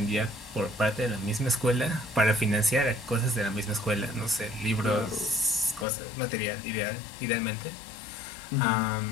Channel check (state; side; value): drops out; right; at 5.9 s